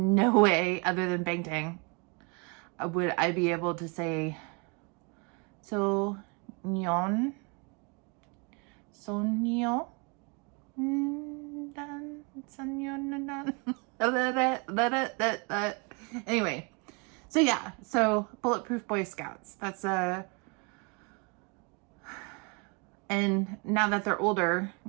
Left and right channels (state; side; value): quieter; left; 31.5 dB